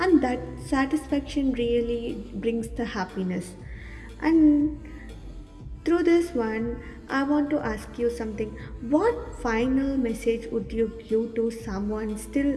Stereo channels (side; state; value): both; identical; correlation 1.00